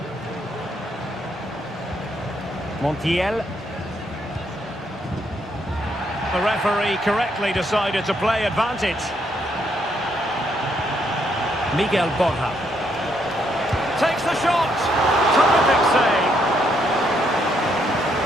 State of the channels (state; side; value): normal; both; correlation 0.74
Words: Montiel. The referee correctly decided to play advantage. Miguel Borja. Takes the shot. Terrific save.